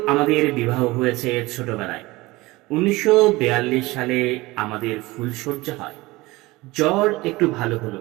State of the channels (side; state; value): left; quieter; 20.9 dB